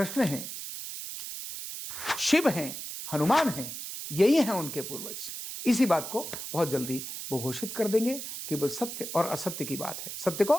हैं, शिव हैं, हनुमान हैं। यही हैं उनके पूर्वज। इसी बात को बहुत जल्दी वो घोषित कर देंगे। केवल सत्य और असत्य की बात है, सत्य को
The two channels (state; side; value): noise; right; hiss, 8 dB below the sound